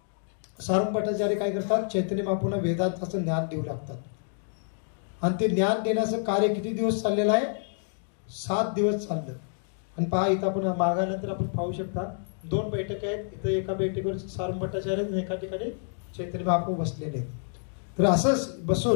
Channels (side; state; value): right; silent; 59 dB below the other